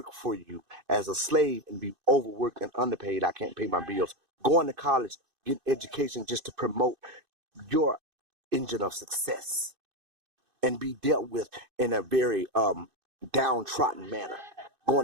for you as a slave and be overworked and underpaid. I can't pay my bills. Going to college, getting education just to promote your engine of success and be dealt with in a very downtrodden manner. Going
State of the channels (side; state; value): left; late; 2.6 ms